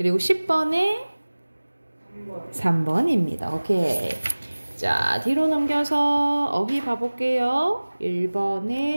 10번에 3번입니다. 오케이. 자, 뒤로 넘겨서 어휘 봐볼게요.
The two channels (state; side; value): inverted; both; correlation -1.00